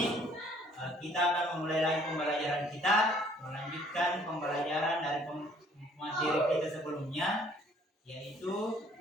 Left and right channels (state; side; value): normal; both; correlation 0.60